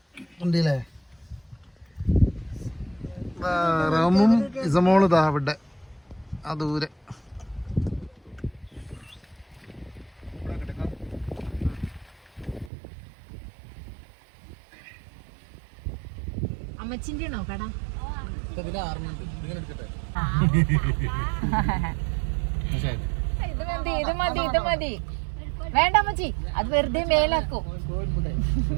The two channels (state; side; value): drops out; left; at 12.7 s